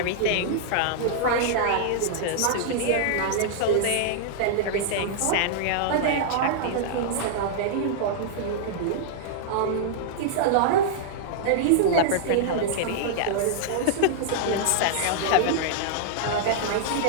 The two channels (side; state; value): both; different; correlation -0.01